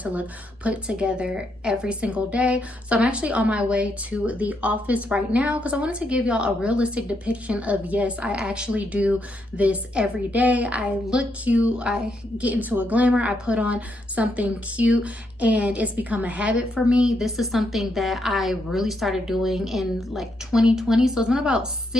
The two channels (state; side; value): normal; both; correlation 0.78